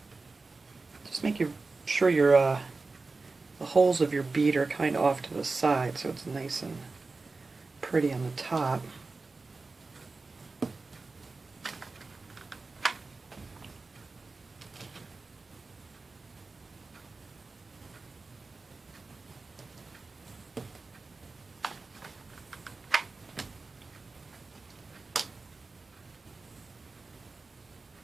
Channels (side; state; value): left; quieter; 3.8 dB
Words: Just make sure your the holes of your bead are kind of off to the side so it's nice and pretty on the top.